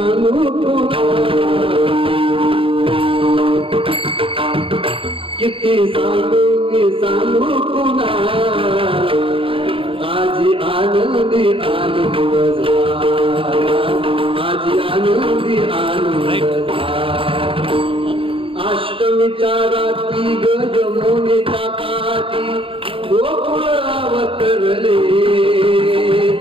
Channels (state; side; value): late; left; 0.26 ms